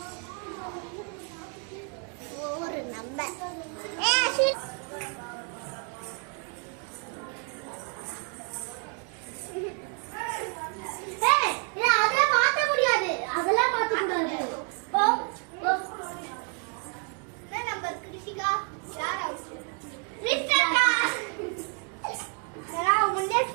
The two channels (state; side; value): quieter; left; 37.7 dB